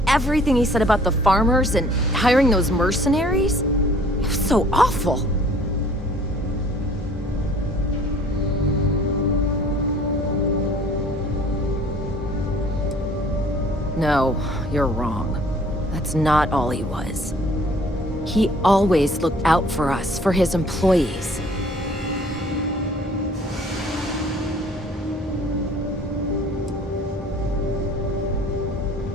everything he said about the farmers and hiring those mercenaries, it was so awful. No, you're wrong. That's not all he was. He always looked out for us, for his employees.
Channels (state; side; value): normal; both; correlation 0.54